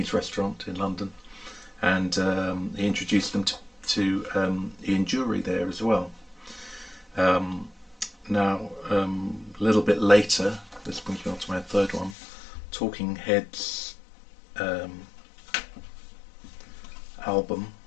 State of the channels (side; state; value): right; drops out; at 12.2 s